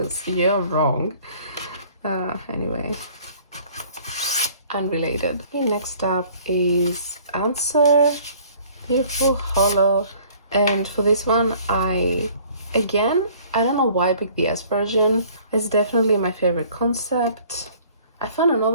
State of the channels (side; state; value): both; inverted; correlation -0.54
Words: you're wrong. Anyway, unrelated. Okay, next up is Answer, Beautiful Hollow, and for this one, I don't know why I picked the S version. It's definitely my favorite concept. I found